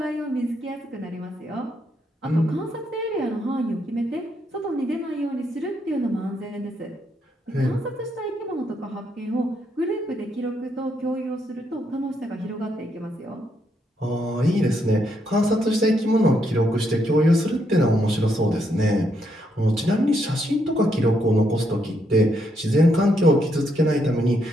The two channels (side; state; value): both; normal; correlation 0.76